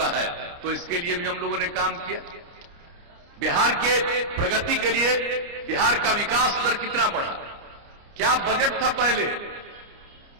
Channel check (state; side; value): late; left; 29 ms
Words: है। तो इसके लिए भी हम लोगों ने काम किया। बिहार के प्रगति के लिए बिहार का विकास दर कितना बढ़ा, क्या बजट था पहले